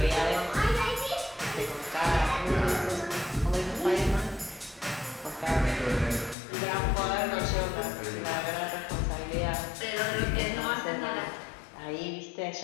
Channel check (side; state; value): right; drops out; at 6.4 s